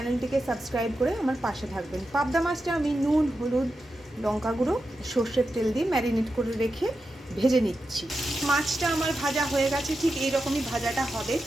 সাবস্ক্রাইব করে আমার পাশে থাকবেন। পাবদা মাছটা আমি নুন, হলুদ, লঙ্কা গুঁড়ো, সর্ষের তেল দিয়ে ম্যারিনেট করে রেখে ভেজে নিচ্ছি। মাছটা আমার ভাজা হয়ে গেছে, ঠিক এইরকমই ভাজাটা হবে,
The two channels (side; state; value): both; normal; correlation 0.89